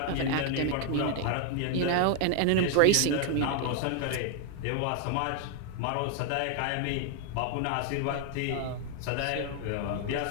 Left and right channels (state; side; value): different; both; correlation 0.00